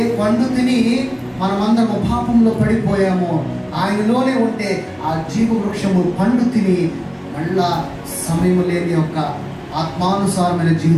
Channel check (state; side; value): identical; both; correlation 1.00